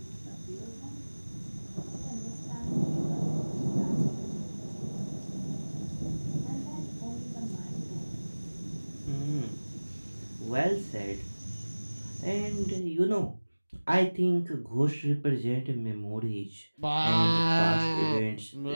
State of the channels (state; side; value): inverted; both; correlation -1.00